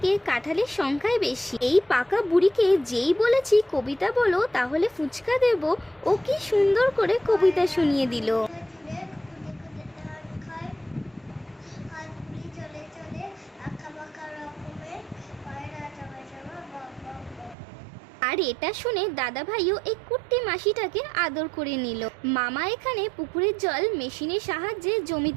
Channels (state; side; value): drops out; left; at 17.6 s